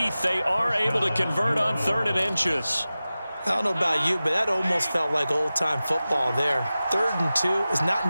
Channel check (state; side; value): inverted; both; correlation -0.96